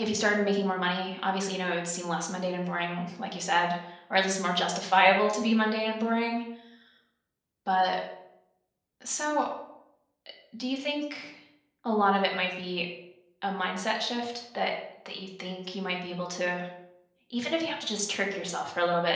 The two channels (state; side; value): identical; both; correlation 1.00